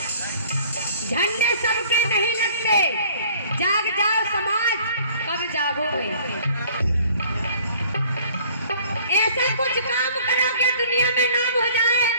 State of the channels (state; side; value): inverted; both; correlation -0.53